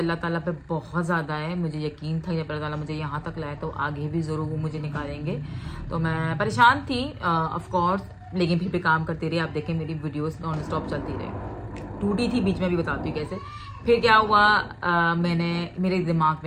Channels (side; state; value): both; identical; correlation 1.00